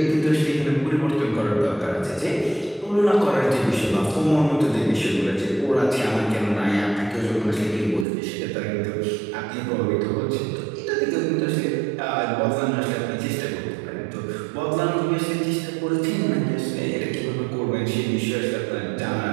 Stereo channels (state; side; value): drops out; left; at 8.1 s